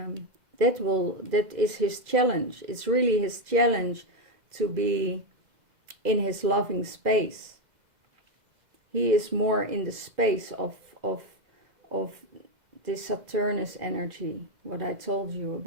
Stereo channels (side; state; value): left; late; 2.0 ms